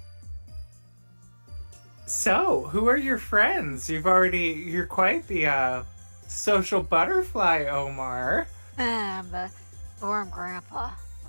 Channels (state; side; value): inverted; both; correlation -1.00